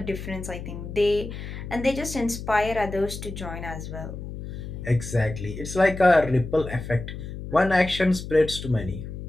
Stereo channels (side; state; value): left; noise; hum, 9 dB below the sound